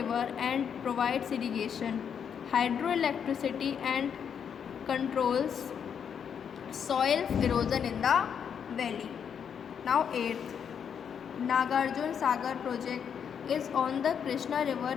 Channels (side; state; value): right; quieter; 7.6 dB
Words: and provides irrigation, hydroelectricity and controls soil erosion in the valley. Now 8th, Nagarjun Sagar project is on the Krishna